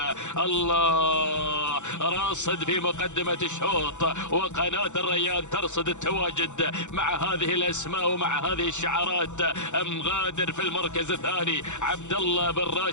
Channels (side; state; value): right; late; 0.84 ms